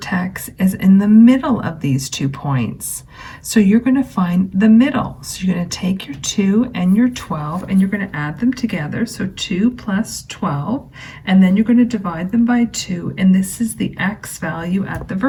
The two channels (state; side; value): identical; both; correlation 1.00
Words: is in the middle of these 2 points. So you're going to find the middle. So you're going to take your 2 and your 12 and you're going to add them together. So 2 plus 12, and then you're going to divide them by 2, and this is the x value at the